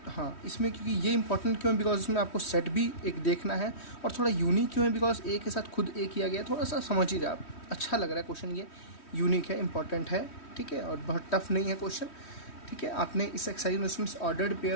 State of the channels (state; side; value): late; right; 3.1 ms